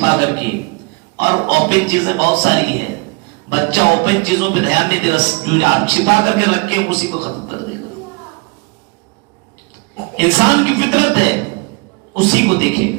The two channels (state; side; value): quieter; left; 28.5 dB